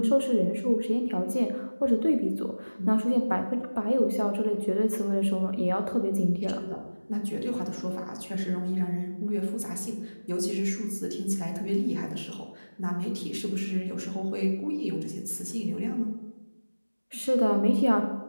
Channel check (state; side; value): inverted; both; correlation -1.00